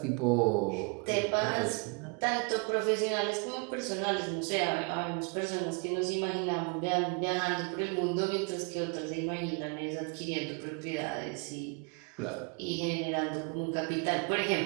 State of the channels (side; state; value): left; quieter; 33.7 dB